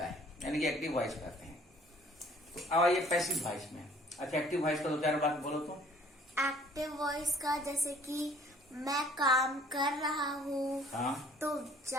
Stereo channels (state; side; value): normal; both; correlation 0.55